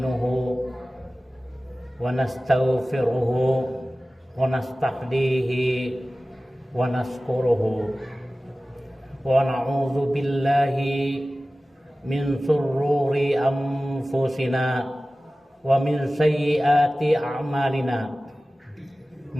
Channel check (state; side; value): normal; both; correlation 0.97